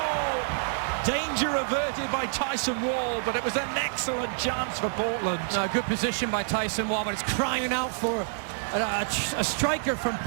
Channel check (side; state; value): left; silent; digital silence